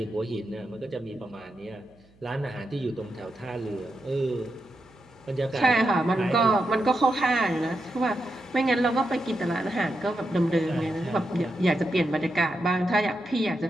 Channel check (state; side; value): noise; right; hum, 30 dB below the sound